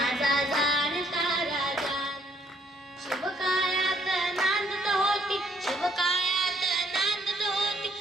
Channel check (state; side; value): normal; both; correlation 0.68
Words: जाणता राजा। शिवकायात नांदत होती, शिवकायात नांदत होती